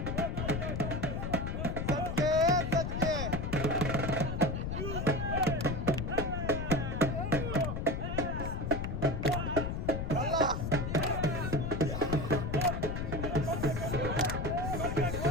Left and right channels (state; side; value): noise; left; rumble, 2 dB below the sound